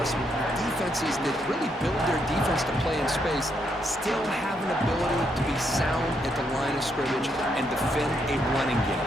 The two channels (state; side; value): normal; both; correlation 0.77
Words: with defenses that really build their defense to play in space, still have an ability to be sound at the line of scrimmage and defend a running